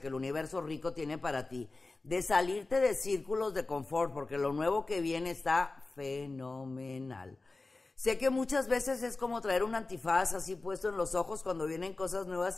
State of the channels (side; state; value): right; quieter; 3.4 dB